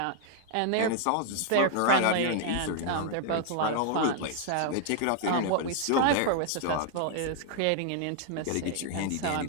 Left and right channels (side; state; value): both; different; correlation 0.00